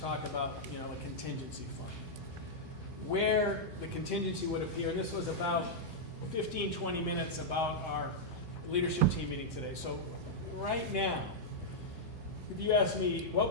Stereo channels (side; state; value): right; late; 1.7 ms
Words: about, a contingency fund, where the contingency would appear, and this was about 15, 20 minutes about our leadership team meeting today. So right now, if you ask me